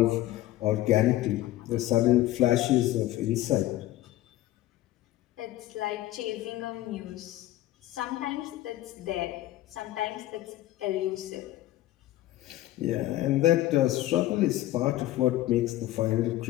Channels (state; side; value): quieter; right; 15.4 dB